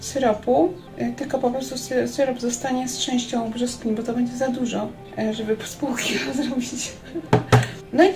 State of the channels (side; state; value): both; identical; correlation 1.00